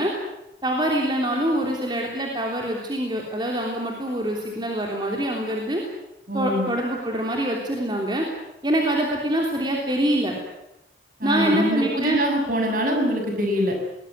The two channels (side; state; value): both; normal; correlation 0.53